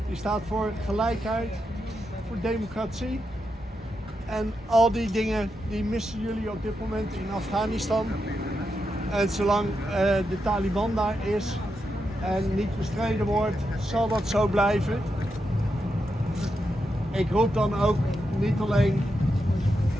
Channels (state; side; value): normal; both; correlation 0.85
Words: Die staat voor gelijkheid, voor democratie. En al die dingen die missen jullie op dit moment in Afghanistan. En zolang de Taliban daar is en niet bestreden wordt, zal dat zo blijven. Ik roep dan ook niet alleen